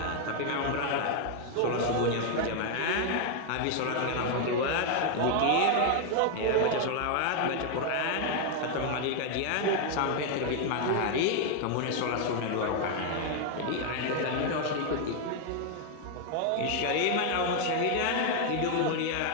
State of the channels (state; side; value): different; both; correlation 0.01